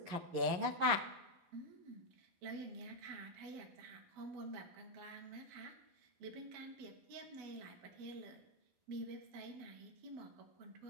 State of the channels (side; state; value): left; late; 11 ms